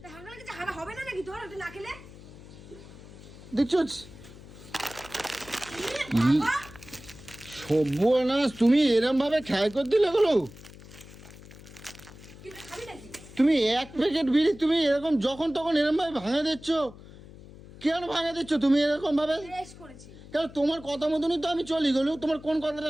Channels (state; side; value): noise; left; hum, 18 dB below the sound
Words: হাগা লেগেছে, হাগা হবে না নাকি তোর? ওটা না খেলে দেখছো সর্বনাশ, তুমি এরম ভাবে খেয়াল করে দিলে গুলো। খাবি নাকি? তুমি এক প্যাকেট বিড়ি তুমি এরকম যখন তখন এরকম ভাবে ভাঙা দিচ্ছ কেন? ভাঙা দিচ্ছ তুমি এরকম ভাবে বেশ করেছি। কেন? তোমার কথা মতনই তো আমি চলি গেলু, তোমার কোন